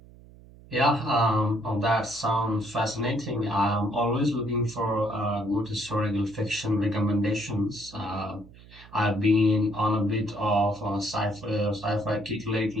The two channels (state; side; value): noise; right; hum, 22 dB below the sound